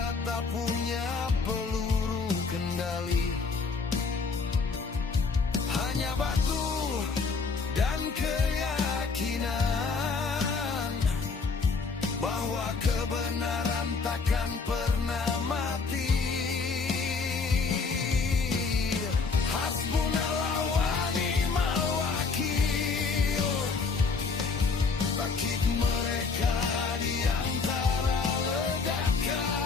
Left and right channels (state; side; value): quieter; right; 4.6 dB